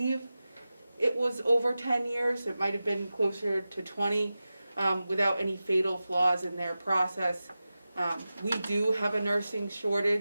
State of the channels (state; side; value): inverted; both; correlation -0.94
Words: it was over 10 years. It might have been closer to 20, without any fatal flaws in their process. We do have a nursing